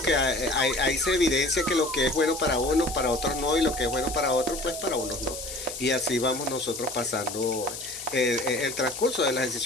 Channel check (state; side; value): noise; left; hiss, 9 dB below the sound